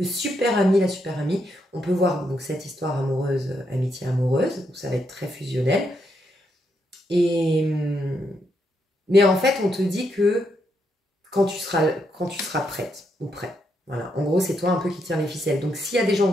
super ami, la super amie. On peut voir donc cette histoire amoureuse, amitié amoureuse, où ça va être très fusionnel. Mais en fait, on te dit que quand tu seras prête ou prêt. Voilà, en gros, c'est toi un peu qui tiens les ficelles. Donc, s'il y a des gens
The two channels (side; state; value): both; normal; correlation 0.79